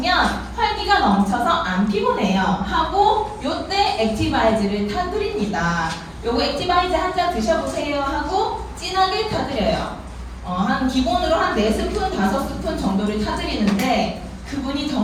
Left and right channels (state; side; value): identical; both; correlation 1.00